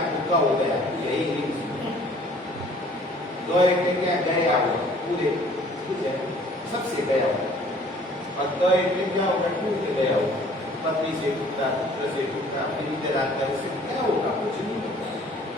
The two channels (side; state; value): both; normal; correlation 0.54